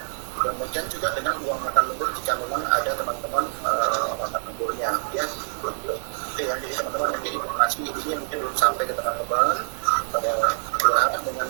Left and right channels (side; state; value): left; silent; digital silence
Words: Kemudian juga dengan uang makan lembur jika memang ada teman-teman makan lemburnya, ya. Itu ya, jadi teman-teman mungkin informasi ini mungkin belum sampai ke teman-teman. Pada berharap dengan